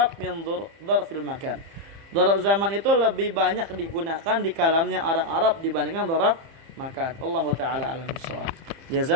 min dzarfil makan. Dzarf zaman itu lebih banyak digunakan di kalamnya orang Arab dibandingkan dzarf makan. Allahu taala alam bissawab.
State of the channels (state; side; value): late; left; 30 ms